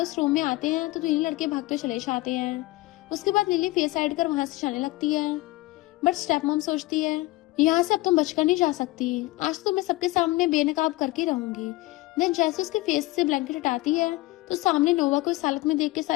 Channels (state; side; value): quieter; right; 19.9 dB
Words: उस रूम में आते हैं तो 3 लड़के भागते चले जाते हैं। उसके बाद लिली फेस साइड कर वहां से जाने लगती है, बट स्टेप मॉम सोचती है, यहाँ से अब तुम बचकर नहीं जा सकती, आज तो मैं सबके सामने बेनकाब करके रहूंगी। देन जैसे उसके फेस से ब्लैंकेट हटाती है तो सामने नोवा को इस हालत में देख के